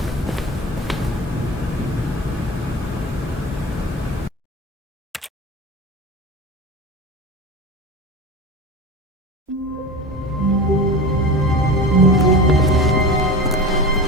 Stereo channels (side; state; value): both; normal; correlation 0.30